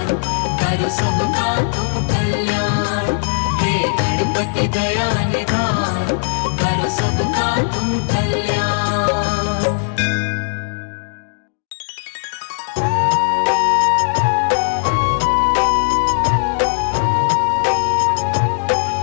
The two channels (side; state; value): right; silent; digital silence